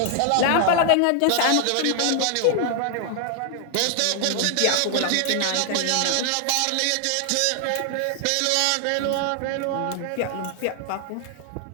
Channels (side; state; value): both; different; correlation 0.00